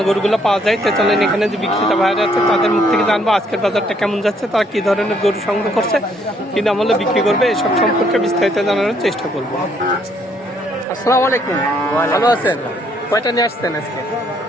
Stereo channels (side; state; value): both; normal; correlation 0.68